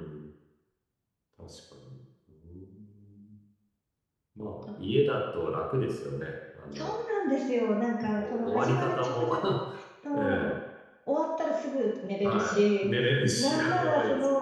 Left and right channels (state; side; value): identical; both; correlation 1.00